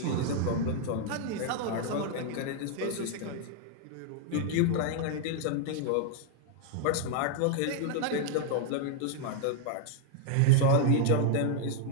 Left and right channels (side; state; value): both; different; correlation 0.00